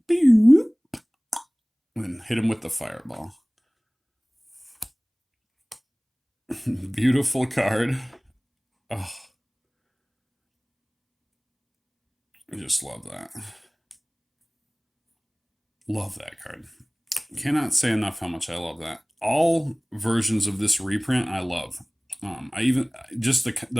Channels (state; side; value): identical; both; correlation 1.00